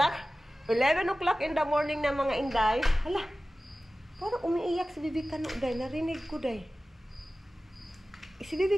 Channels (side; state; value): both; normal; correlation 0.96